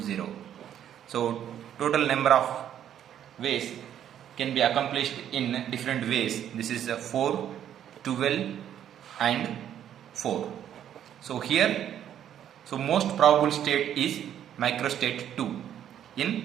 So total number of ways can be accomplished in different ways. This is 4, 12 and 4. So here, so most probable state is microstate 2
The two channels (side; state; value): left; quieter; 10.2 dB